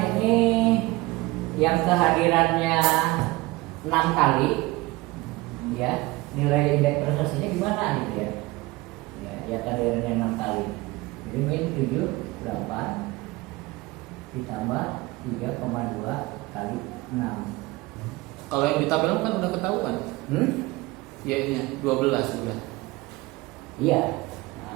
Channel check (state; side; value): quieter; left; 21.3 dB